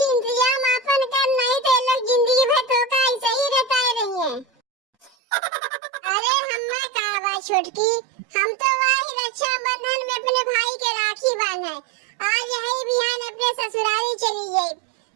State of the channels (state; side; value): drops out; left; at 5.1 s